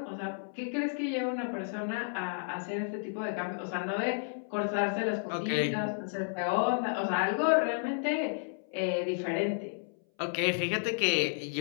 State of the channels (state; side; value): silent; right; 56 dB below the other